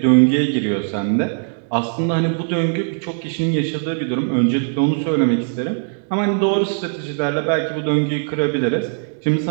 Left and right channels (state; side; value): silent; left; 66 dB below the other